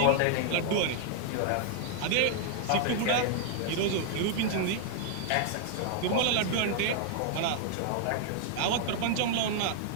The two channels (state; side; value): different; both; correlation 0.00